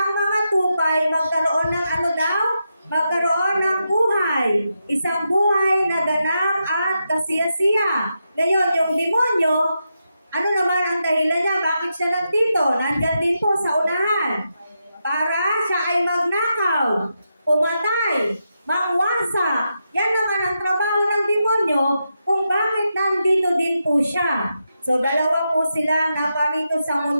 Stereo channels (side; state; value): both; inverted; correlation -0.86